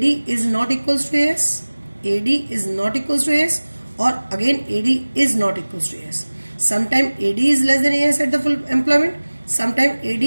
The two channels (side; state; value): both; inverted; correlation -1.00